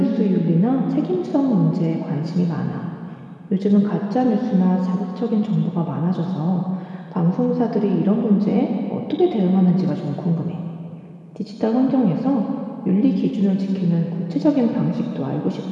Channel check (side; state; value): both; identical; correlation 1.00